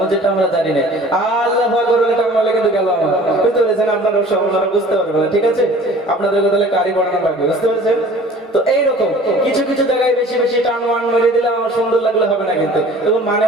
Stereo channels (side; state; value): both; normal; correlation 0.47